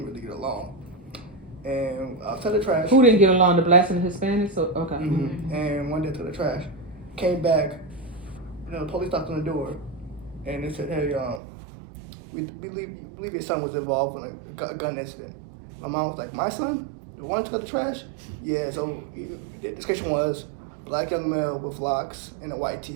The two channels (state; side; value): drops out; left; at 11.4 s